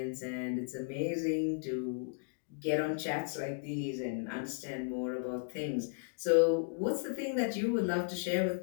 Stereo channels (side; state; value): right; silent; digital silence